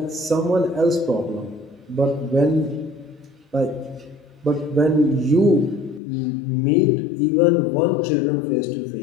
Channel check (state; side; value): drops out; right; at 6.0 s